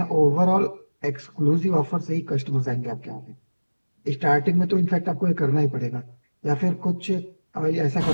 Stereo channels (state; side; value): inverted; both; correlation -1.00